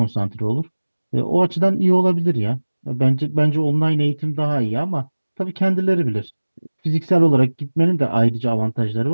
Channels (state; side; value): inverted; both; correlation -1.00